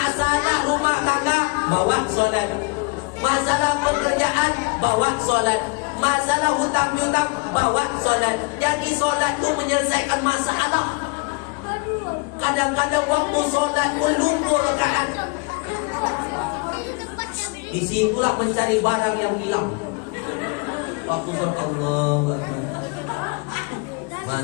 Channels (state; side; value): quieter; right; 29.1 dB